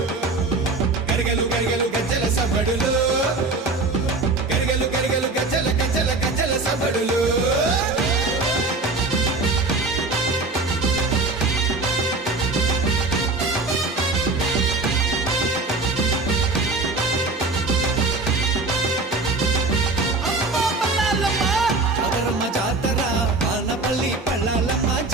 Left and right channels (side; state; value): left; quieter; 3.5 dB